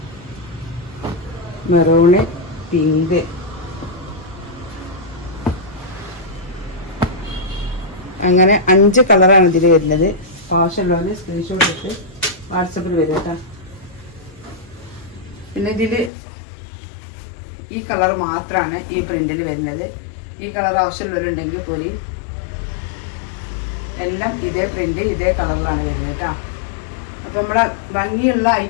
Maroon, pink. അങ്ങനെ 5 കളറാണ് ഇതിൽ വരുന്നത്. ആവശ്യമുള്ളത് സ്ക്രീൻഷോട്ട് ഇട്ട് വാട്സപ്പിൽ വരും കേട്ടോ. പിന്നെ ഇതിൽ ഈ കളർ മാത്രമാണ് ഈ പ്രിന്റിൽ വരുന്നത്. ഈ കളർ ആവശ്യമുള്ളവരുണ്ടെങ്കിൽ പോരി. എല്ലാം ഇതേ പ്രിന്റ് ഇതേ കളറിലാണ് വരുന്നത് കേട്ടോ. അപ്പം നമ്മളെ ഭംഗിയുള്ള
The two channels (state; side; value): drops out; right; at 16.1 s